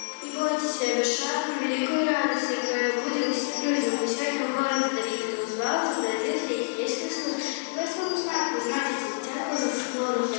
бойтеся, вишаем великую радость, которая будет людям. Мы сегодня в городе Давида узнаваться, родился есть Христос. Вы своему знаку знаете, дитятку за склоном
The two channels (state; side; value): silent; right; 60 dB below the other